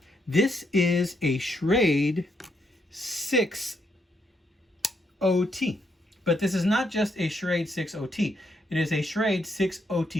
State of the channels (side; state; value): both; normal; correlation 0.77